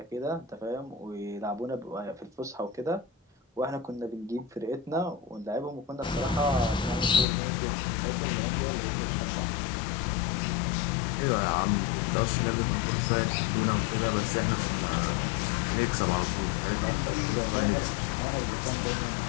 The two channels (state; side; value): drops out; right; at 7.2 s